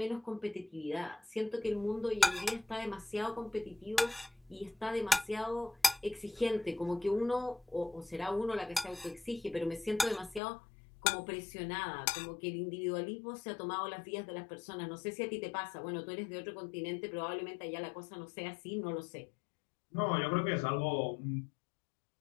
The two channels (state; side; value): drops out; right; at 10.4 s